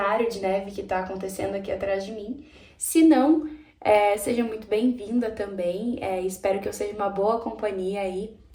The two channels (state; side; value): identical; both; correlation 1.00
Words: de neve que tá acontecendo aqui atrás de mim. Se não, seja muito bem-vinda também. Espero que eu seja uma boa companhia aí